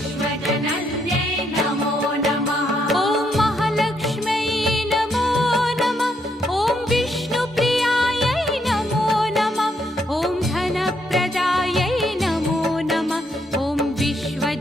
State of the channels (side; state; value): both; normal; correlation 0.75